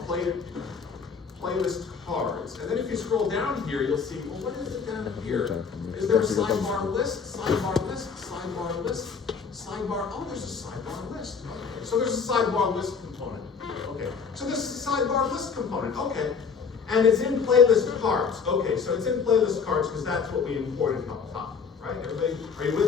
playlist cards. And then if you scroll down here, you'll see, well, what is it down here? Is there a sidebar list? Sidebar list? Sidebar list? Sidebar, oh, there's a sidebar list. Okay. So there's a sidebar list component. Okay. So this is a sidebar list component. Okay. And it's in playlist cards. Okay, so it's in playlist cards because that's what we imported up top, right? Everybody, are you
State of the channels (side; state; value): right; quieter; 5.8 dB